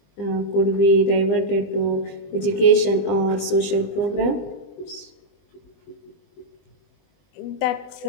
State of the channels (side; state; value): right; late; 20 ms